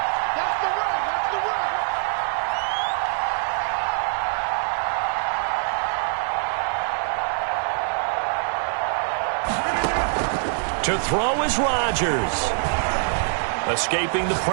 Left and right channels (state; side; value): silent; left; digital silence